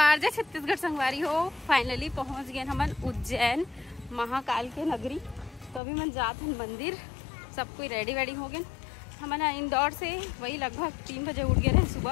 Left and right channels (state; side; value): drops out; right; at 5.8 s